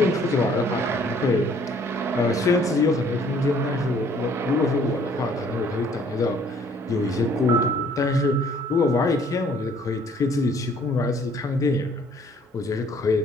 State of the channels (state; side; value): normal; both; correlation 0.59